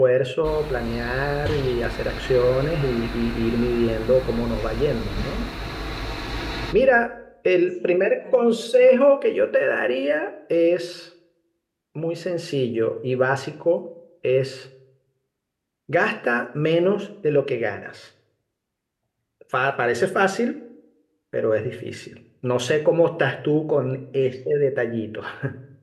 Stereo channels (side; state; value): both; identical; correlation 1.00